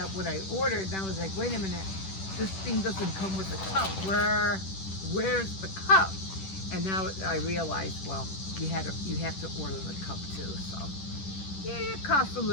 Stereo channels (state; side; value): late; right; 10 ms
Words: what I ordered, and I was like, wait a minute, this thing doesn't come with a cup. Where's the cup? And now I realized, well, you have to order the cup too. So yeah, it costs a